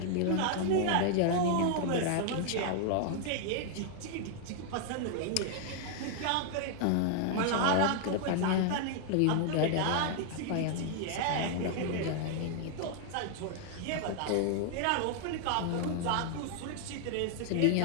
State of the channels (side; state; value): both; different; correlation 0.00